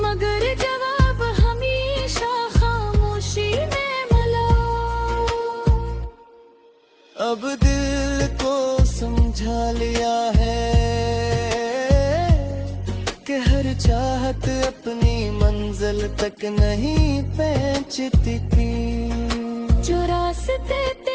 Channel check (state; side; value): identical; both; correlation 1.00